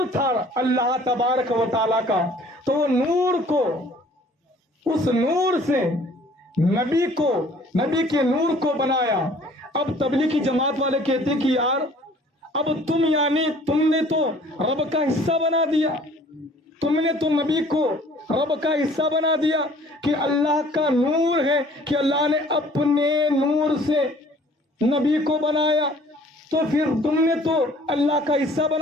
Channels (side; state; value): both; normal; correlation 0.54